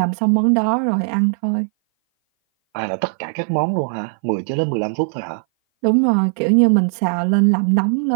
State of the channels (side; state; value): left; silent; 59 dB below the other